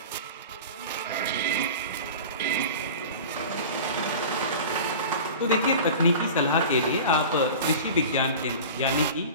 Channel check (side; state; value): both; inverted; correlation -0.35